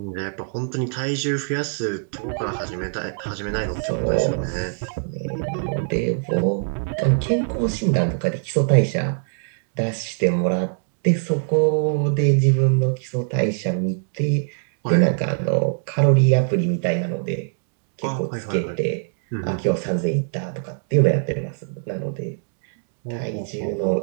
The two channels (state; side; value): silent; left; digital silence